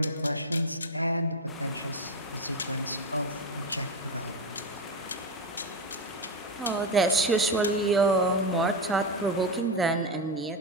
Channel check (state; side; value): normal; both; correlation 0.13